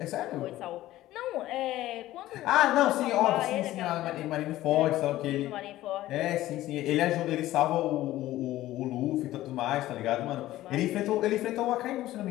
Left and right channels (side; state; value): right; quieter; 15.3 dB